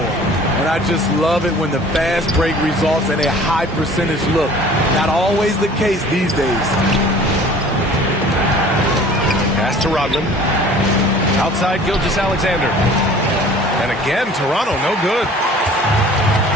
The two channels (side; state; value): both; normal; correlation 0.48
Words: And I just love it when the fast break results in a high percentage look. Not always the case these days. Pass to Rodman. Outside Gilgeous-Alexander. And again, Toronto, no good.